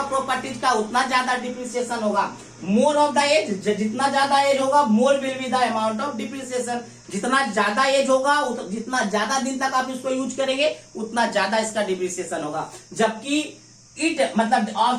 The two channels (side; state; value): both; identical; correlation 1.00